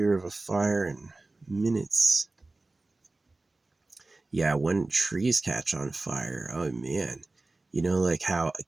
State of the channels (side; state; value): left; quieter; 3.2 dB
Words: of a fire in minutes. Yeah, when trees catch on fire, oh man. You know, like how a